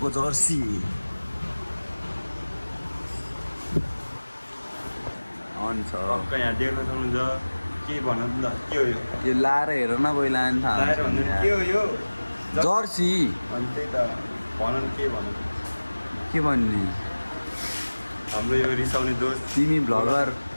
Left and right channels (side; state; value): both; inverted; correlation -1.00